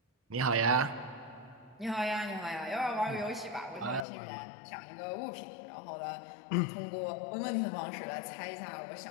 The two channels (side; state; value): right; drops out; at 4.0 s